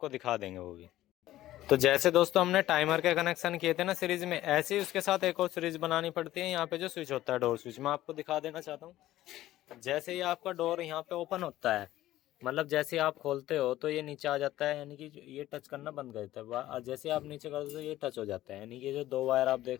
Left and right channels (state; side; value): quieter; right; 14.8 dB